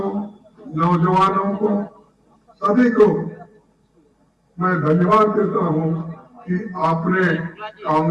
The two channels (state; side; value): identical; both; correlation 1.00